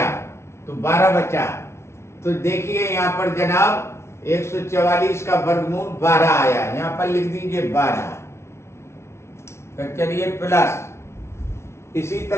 तो 12 बचा। तो देखिए यहाँ पर जनाब 144 का वर्गमूल 12 आया, यहाँ पर लिख दीजिए 12। तो चलिए प्लस, इसी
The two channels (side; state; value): right; late; 0.13 ms